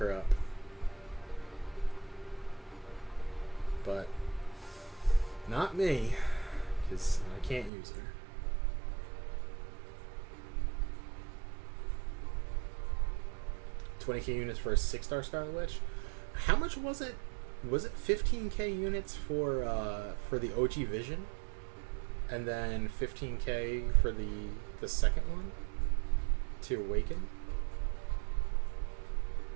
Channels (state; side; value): drops out; left; at 7.7 s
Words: up. But not me, because I can't use her. $20K units for a 6-star Scarlet Witch. How much was it? Was it 15K units for the OG Vision, and then 15K for the second one to Awaken?